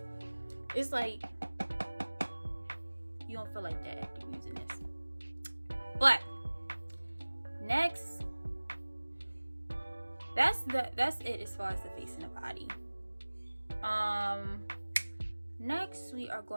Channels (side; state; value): both; inverted; correlation -1.00